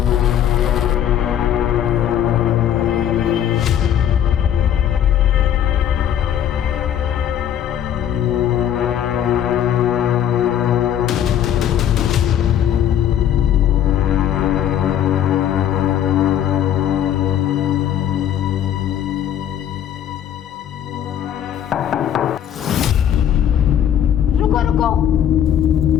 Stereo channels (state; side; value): quieter; right; 10.1 dB